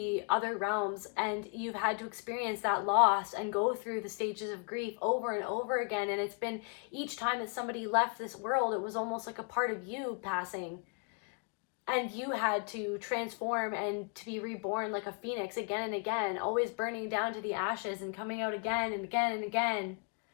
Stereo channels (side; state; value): right; quieter; 36.5 dB